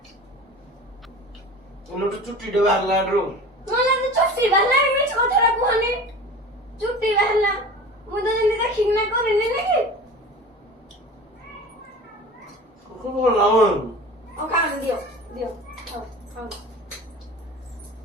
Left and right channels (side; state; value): both; normal; correlation 0.36